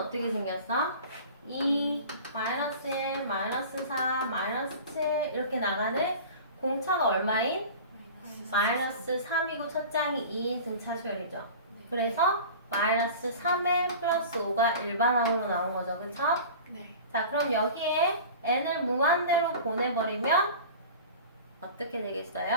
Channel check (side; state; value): both; inverted; correlation -0.38